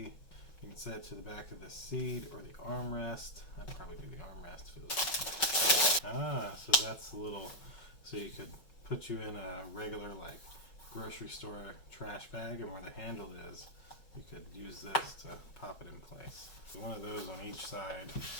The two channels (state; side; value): late; right; 5.4 ms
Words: You can set it to the back of the seat or the armrest. I'd probably do the armrest for this. So that's a little, so you could put you in a regular like grocery store trash bag, and where the handle is, you could use this to pop it in place. So one of those on each side.